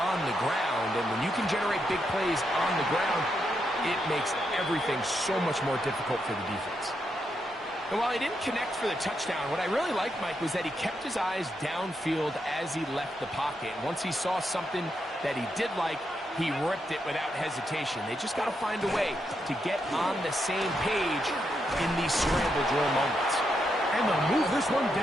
the ground. And when you can generate big plays on the ground, it makes everything so much more difficult for the defense. And while he didn't connect for the touchdown, what I really liked, Mike, was that he kept his eyes downfield as he left the pocket. And once he saw something that he did like, he ripped it without hesitation. They just got to find a way to get on the same page in these scramble drill moments. And they'll move this one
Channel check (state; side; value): normal; both; correlation 0.82